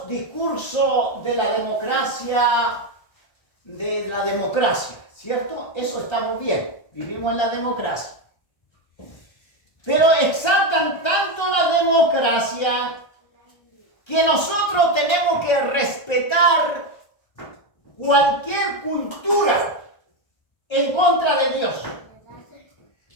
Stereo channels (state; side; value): late; right; 1.3 ms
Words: discursos de la democracia, ¿cierto? Eso estamos bien, vivimos en la democracia. Pero exaltan tanto la democracia que nosotros tenemos que respetar cualquier cultura en contra de Dios.